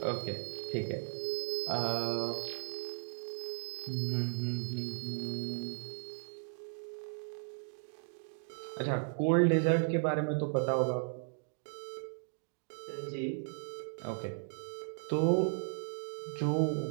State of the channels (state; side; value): silent; left; digital silence